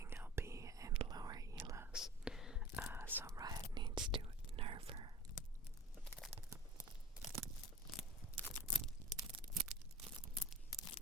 LP and lower elos, so Riot needs to nerf her.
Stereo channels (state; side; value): normal; both; correlation 0.38